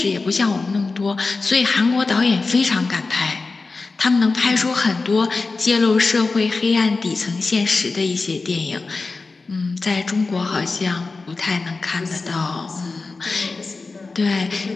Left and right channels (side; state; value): right; quieter; 3.9 dB